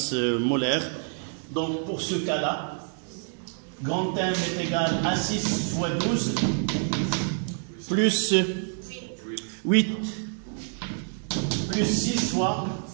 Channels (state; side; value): silent; left; 55 dB below the other